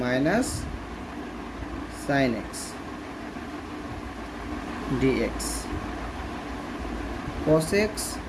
minus sin x dx। cos x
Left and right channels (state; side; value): identical; both; correlation 1.00